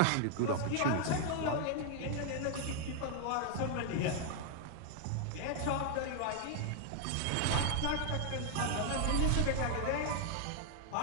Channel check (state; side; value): different; both; correlation 0.00